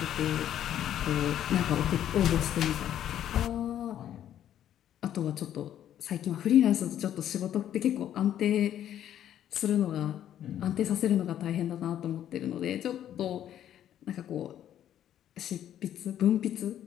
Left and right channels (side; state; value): right; quieter; 10.9 dB